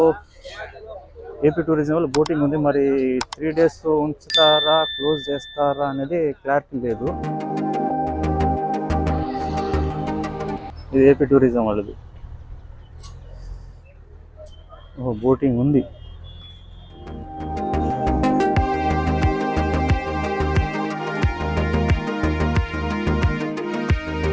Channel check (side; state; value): both; identical; correlation 1.00